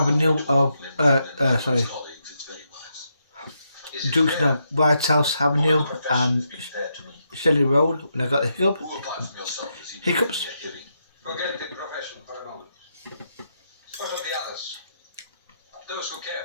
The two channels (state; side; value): inverted; both; correlation -0.81